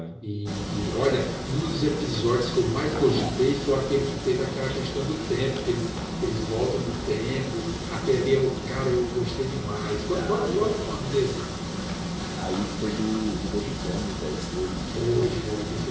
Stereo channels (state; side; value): identical; both; correlation 1.00